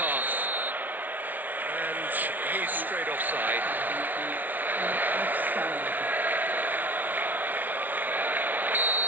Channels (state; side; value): late; left; 0.081 ms